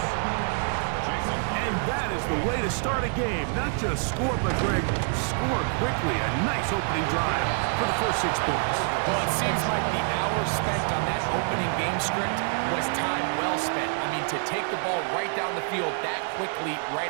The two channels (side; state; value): left; silent; 56 dB below the other